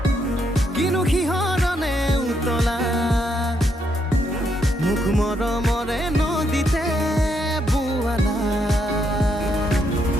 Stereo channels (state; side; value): normal; both; correlation 0.77